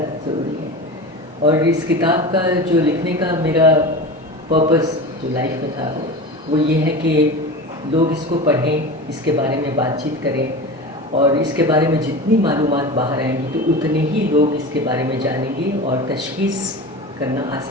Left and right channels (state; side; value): normal; both; correlation 0.30